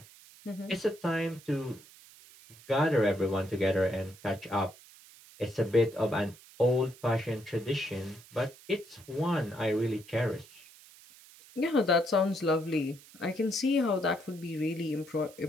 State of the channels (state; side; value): noise; right; hiss, 22 dB below the sound